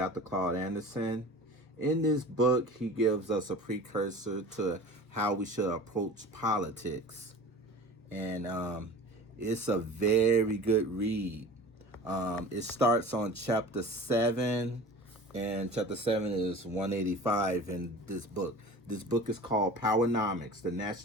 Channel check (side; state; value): both; normal; correlation 0.39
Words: Claud Anderson. In this book, he gives us a precursor to how we should approach politics. And it's a very good read. It starts on chapter 7, and chapter 7 is 185 in this book. This book is called PowerNomics, the